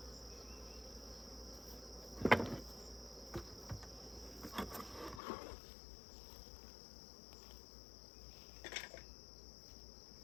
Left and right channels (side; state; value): right; drops out; at 5.2 s